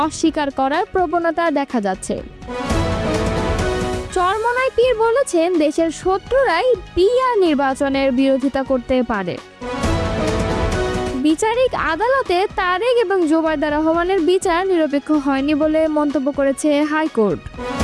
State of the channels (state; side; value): identical; both; correlation 1.00